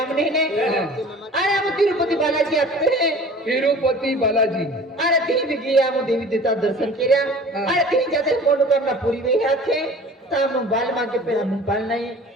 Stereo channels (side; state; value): both; normal; correlation 0.44